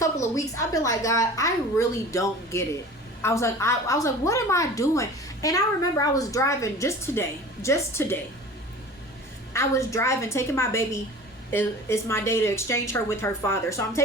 of weeks I've been like, God, I really don't get it. I was like, what am I doing? And I remember I was driving just today. I was driving, taking my baby. It's my day to exchange her with her father. So I'm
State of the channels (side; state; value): both; normal; correlation 0.40